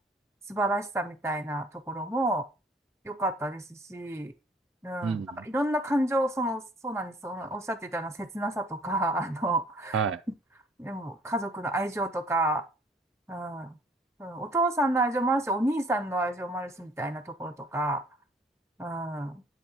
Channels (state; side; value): normal; both; correlation 0.56